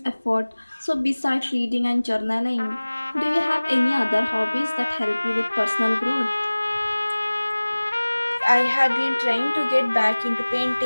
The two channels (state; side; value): inverted; both; correlation -1.00